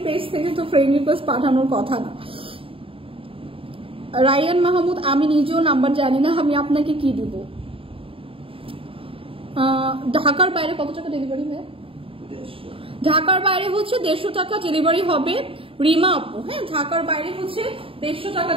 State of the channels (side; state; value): left; late; 0.26 ms